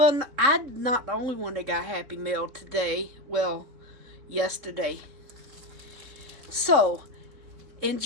I'm not the only one that got Happy Mail today. Well, yesterday. So,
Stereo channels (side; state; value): left; late; 3.6 ms